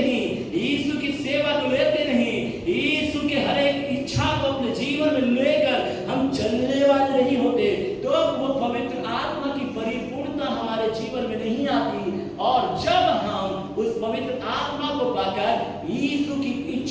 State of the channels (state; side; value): identical; both; correlation 1.00